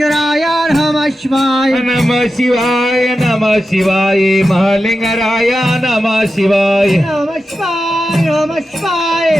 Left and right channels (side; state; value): both; normal; correlation 0.91